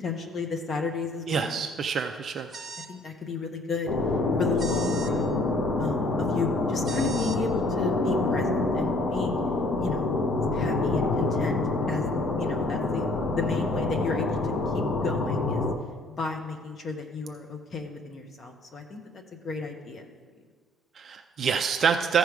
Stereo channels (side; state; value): both; normal; correlation 0.58